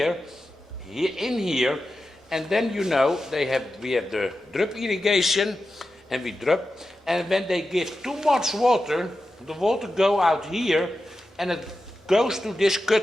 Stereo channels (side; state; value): both; normal; correlation 0.92